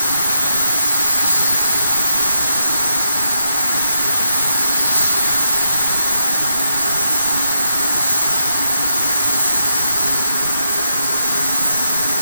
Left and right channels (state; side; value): inverted; both; correlation -0.82